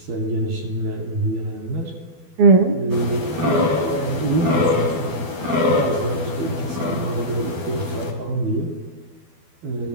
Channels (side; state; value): left; late; 12 ms